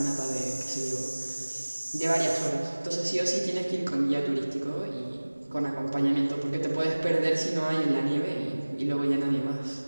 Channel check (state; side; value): inverted; both; correlation -1.00